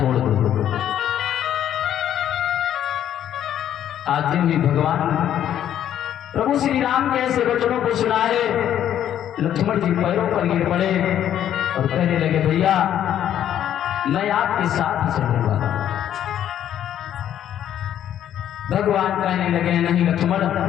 दो। आज भी भगवान प्रभु श्री राम के ऐसे वचनों को सुना है, लक्ष्मण जी पैरों पर गिर पड़े और कहने लगे, भैया मैं आपके साथ ही चलूंगा। भगवान कहने लगे, नहीं लक्ष्मण,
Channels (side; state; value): right; quieter; 10.6 dB